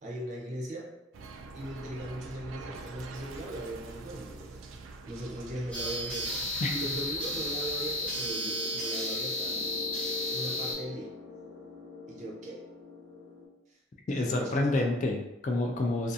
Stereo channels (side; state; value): both; normal; correlation 0.39